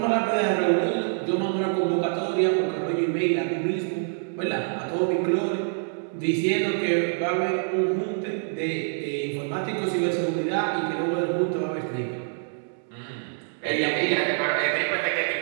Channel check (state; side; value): silent; left; digital silence